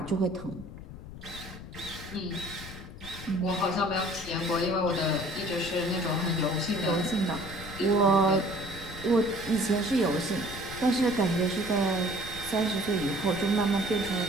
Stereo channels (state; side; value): noise; left; rumble, 13 dB below the sound